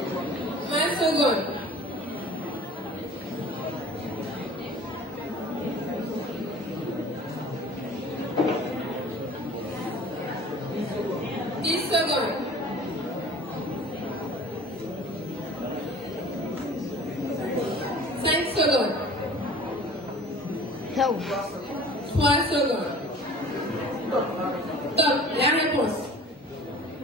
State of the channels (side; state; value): both; normal; correlation 0.44